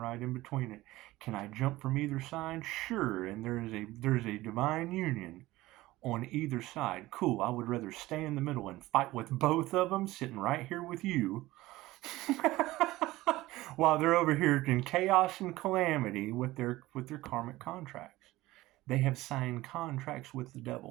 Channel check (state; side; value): quieter; left; 17.9 dB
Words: in between it. Can I jump from either side? Sure. And there's a divine union on either side. Cool. I would rather stay in the middle and fight with both of them, sitting right here with you, while they're over here in chaos and calamity with their karmic contracts. They have signed contracts with the